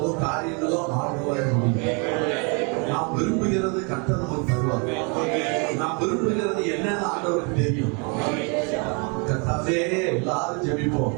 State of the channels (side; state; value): left; quieter; 34.7 dB